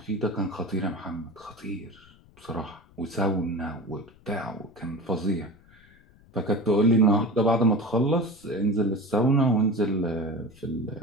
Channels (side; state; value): left; noise; rumble, 27 dB below the sound